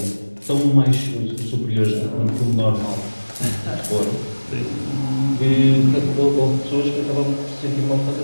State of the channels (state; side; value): inverted; both; correlation -1.00